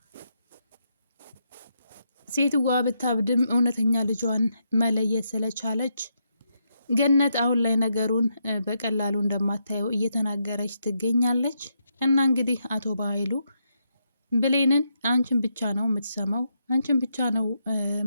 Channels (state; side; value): inverted; both; correlation -0.80